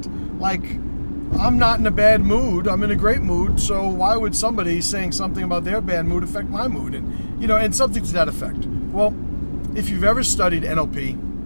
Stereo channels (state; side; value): inverted; both; correlation -1.00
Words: Like, I'm not in a bad mood. I'm in a great mood. So why would somebody saying something about their bad mood affect my mood? And something to that effect. Well, if you've ever studied NLP,